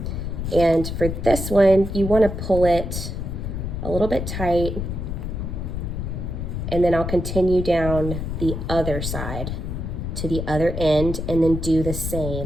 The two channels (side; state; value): left; noise; rumble, 4 dB below the sound